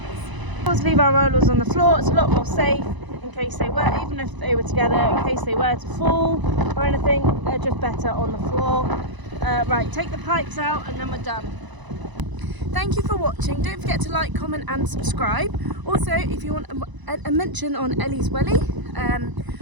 is. Always leave our rollers on the floor, it's a lot more safe in case they were, even if they were together, in case they were to fall or anything, they're just better on the floor. Right, take the pipes out and then we're done. Thank you for watching, don't forget to like, comment and subscribe. Also, if you want a mention on Ellie's Welly,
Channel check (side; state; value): left; late; 1.0 ms